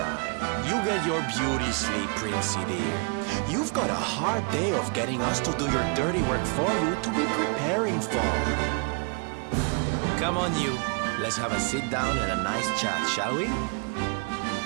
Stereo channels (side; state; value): left; quieter; 36.3 dB